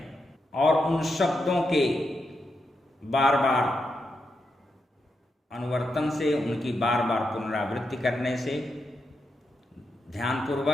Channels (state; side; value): normal; both; correlation 0.84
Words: और उन शब्दों के बार बार अनुवर्तन से, उनकी बार बार पुनरावृत्ति करने से,